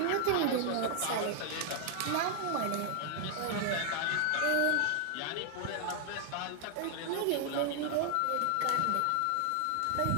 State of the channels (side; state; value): both; different; correlation 0.00